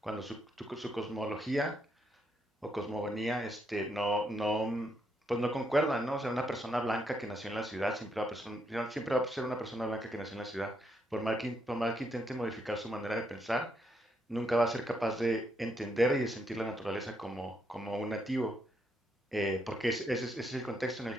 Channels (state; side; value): normal; both; correlation 0.76